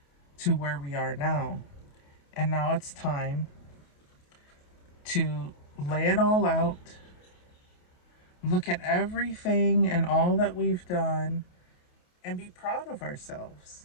to where we are now. And now it's time to lay it all out, look at everything and all that we've done, and be proud of ourselves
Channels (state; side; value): late; right; 28 ms